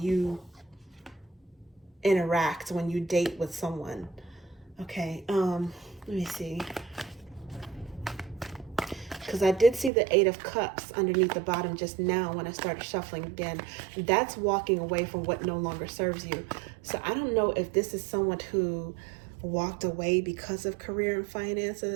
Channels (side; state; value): left; drops out; at 9.9 s